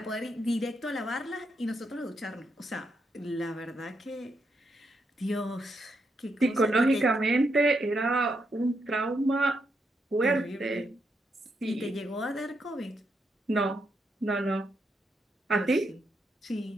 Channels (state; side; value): normal; both; correlation 0.80